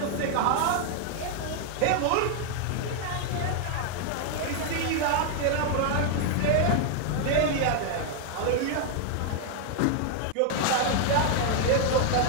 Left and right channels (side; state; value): both; different; correlation 0.00